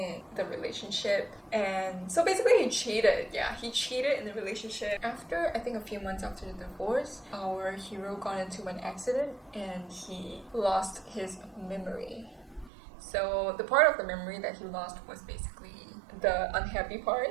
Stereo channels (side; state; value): left; drops out; at 12.7 s